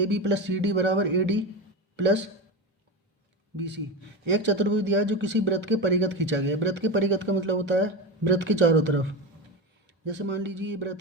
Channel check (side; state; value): both; normal; correlation 0.20